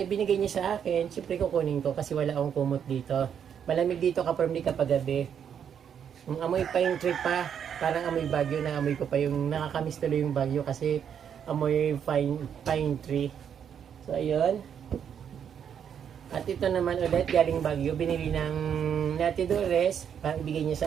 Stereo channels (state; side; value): quieter; left; 8.2 dB